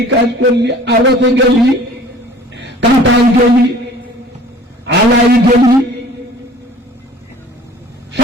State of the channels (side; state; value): both; normal; correlation 0.48